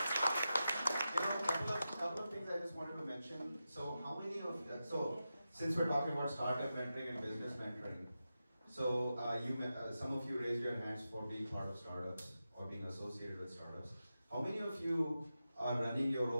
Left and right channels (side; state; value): both; inverted; correlation -0.91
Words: Couple of things I just wanted to mention. So how many of since we're talking about startup mentoring and business mentoring, so some of you raised your hands for being part of startups or being associated with startups. How many of you are running your